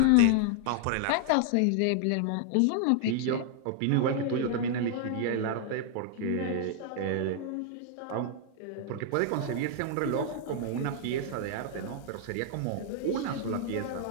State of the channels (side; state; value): both; different; correlation 0.00